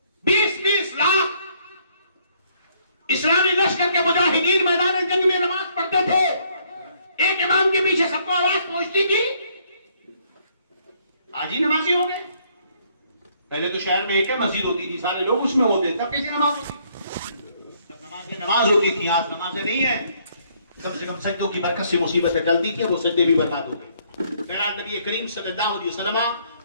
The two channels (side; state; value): both; inverted; correlation -0.67